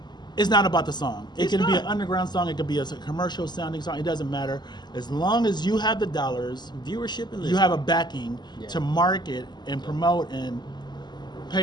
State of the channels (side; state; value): right; late; 0.21 ms